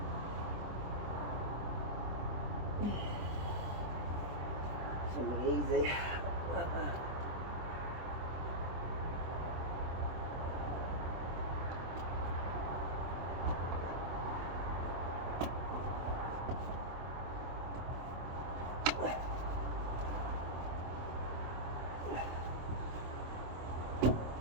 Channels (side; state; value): left; late; 24 ms